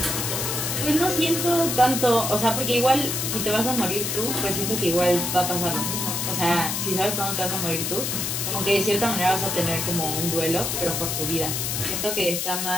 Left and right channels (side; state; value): left; noise; hiss, 1 dB below the sound